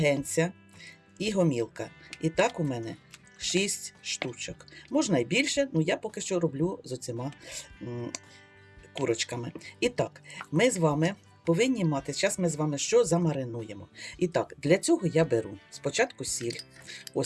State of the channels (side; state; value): both; identical; correlation 1.00